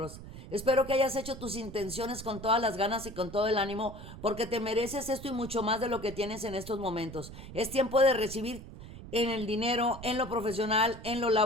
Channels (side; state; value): right; noise; rumble, 14 dB below the sound